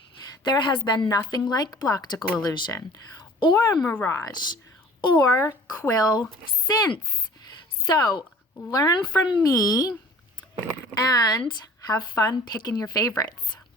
there has been nothing like Bloctical Illusion or Mirage or Quill since. So, learn from me and have fun picking your favorites.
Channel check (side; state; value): both; normal; correlation 0.47